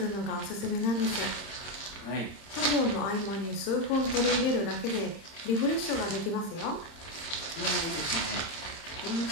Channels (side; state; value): right; late; 31 ms